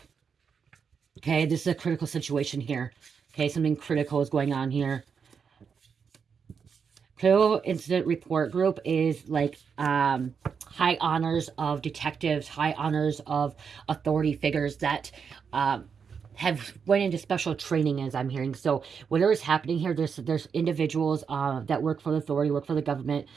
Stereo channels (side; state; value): left; quieter; 6.3 dB